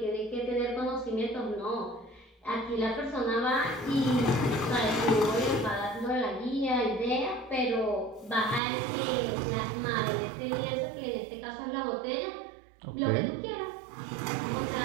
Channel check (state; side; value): drops out; left; at 8.6 s